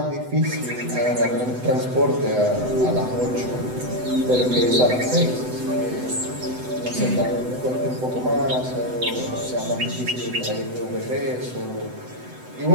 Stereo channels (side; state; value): left; late; 8.0 ms